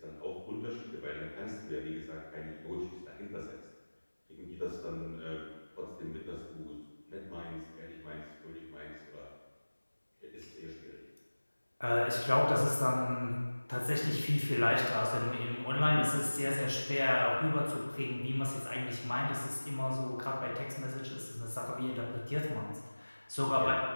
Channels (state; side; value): inverted; both; correlation -1.00